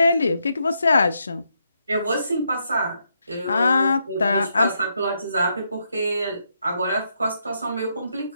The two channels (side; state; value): both; inverted; correlation -0.79